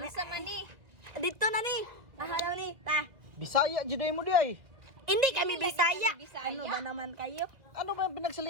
man ni? Dito na ni. Ahalaw ni. Ta. Bisaya, juday mo di ay. Hindi kami Hindi Bisaya. kami Bisaya. Ano ba naman kayo? Ano ba yung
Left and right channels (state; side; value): late; left; 2.1 ms